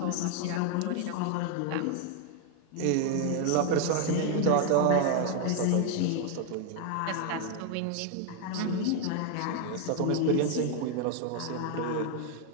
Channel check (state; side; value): different; both; correlation 0.01